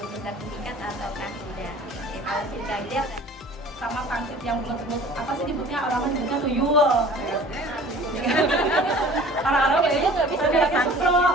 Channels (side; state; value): both; normal; correlation 0.47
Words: sertifikat ataukah tidak. Oke, kalau tidak Sama pangsit yang bulat-bulat, apa sih disebutnya, orang nyebutnya tuyul. Orang-orang kayaknya nggak bisa bilangnya